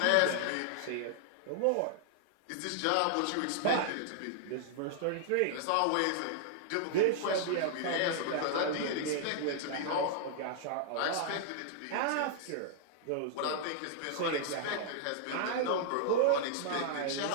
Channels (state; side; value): different; both; correlation -0.01